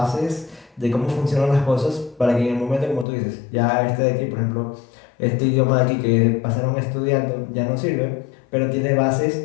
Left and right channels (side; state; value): right; drops out; at 3.1 s